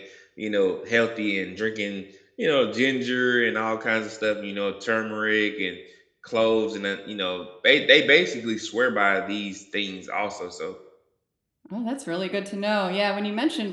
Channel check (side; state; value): both; identical; correlation 1.00